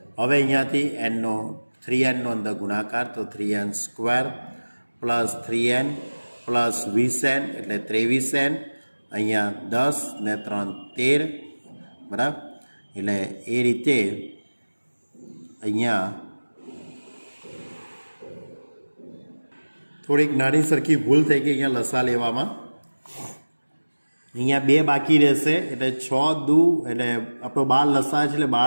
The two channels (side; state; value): both; inverted; correlation -1.00